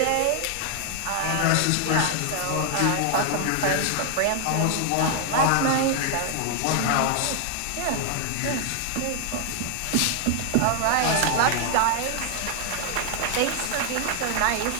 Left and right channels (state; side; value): different; both; correlation 0.00